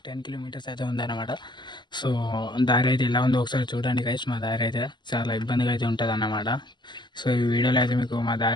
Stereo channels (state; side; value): late; right; 0.21 ms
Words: 10 కిలోమీటర్స్ అయితే ఉందన్నమాట. సో దారి అయితే ఎలా ఉందో ఒకసారి చూడండి గైస్. మా దారి అయితే చాలా ఇబ్బందిగా అయితే ఉంటుంది అన్నమాట. సో ఈ వీడియోలో అయితే మీకు మా